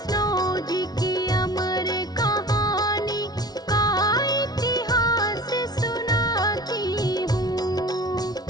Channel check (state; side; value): late; right; 0.19 ms